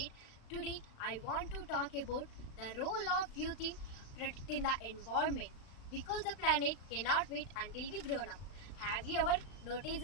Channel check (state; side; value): late; right; 36 ms